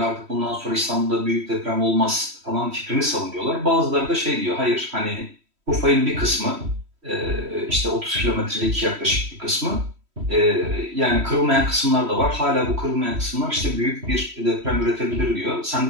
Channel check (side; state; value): left; late; 3.1 ms